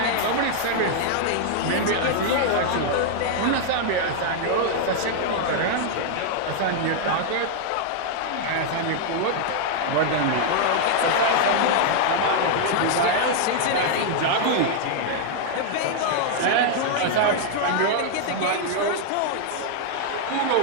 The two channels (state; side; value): different; both; correlation 0.00